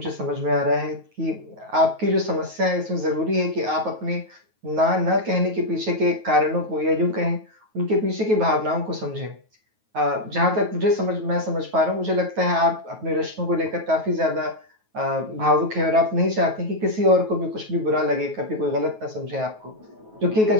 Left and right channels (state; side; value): late; left; 9.3 ms